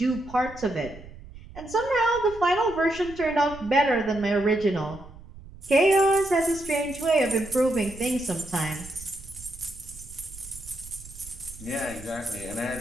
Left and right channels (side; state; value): right; noise; rumble, 17 dB below the sound